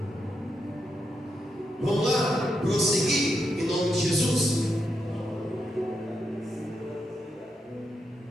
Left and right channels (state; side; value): normal; both; correlation 0.83